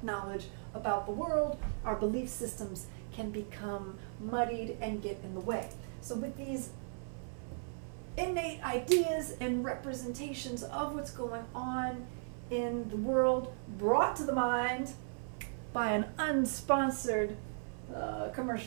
knowledge about the world, our belief systems can become muddied and get in the way. So with these innate ideas and representations of what's going on in the world brought to the mind by an unsponsored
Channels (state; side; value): silent; left; 53 dB below the other